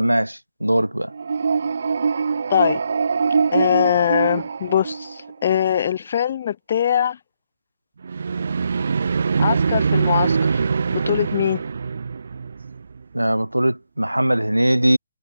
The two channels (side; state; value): both; inverted; correlation -0.79